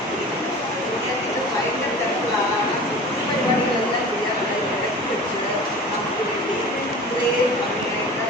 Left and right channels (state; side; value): normal; both; correlation 0.39